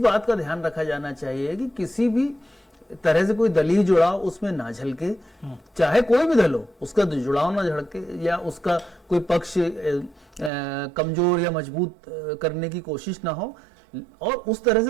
बात का ध्यान रखा जाना चाहिए कि किसी भी तरह से कोई दलील जुड़ाव उसमें ना झलके, चाहे कोई भी दल हो, उसका जुड़ाव ना झलके या उसका कोई पक्ष कमजोर या मजबूत करने की कोशिश ना हो, और उस तरह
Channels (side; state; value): left; drops out; at 10.5 s